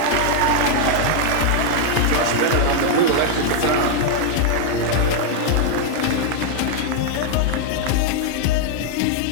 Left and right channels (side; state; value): both; different; correlation 0.00